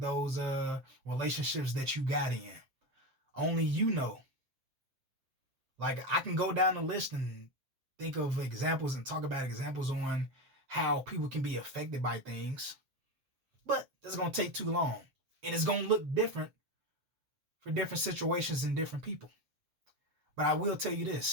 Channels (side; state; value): left; late; 7.5 ms